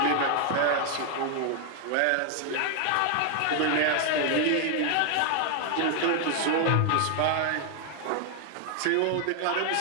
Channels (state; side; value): different; both; correlation 0.00